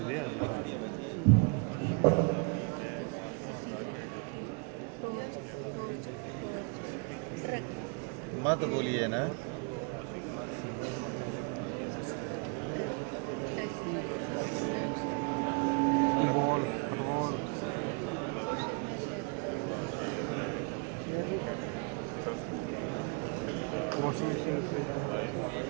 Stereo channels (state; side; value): quieter; left; 35.4 dB